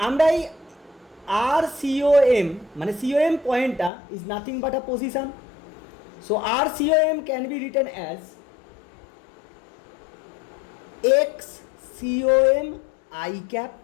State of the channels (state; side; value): drops out; right; at 3.9 s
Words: আমরা এই আর সিওএম মানে সিওএম পয়েন্টটা is nothing but a position. So r COM can be written as x COM I cap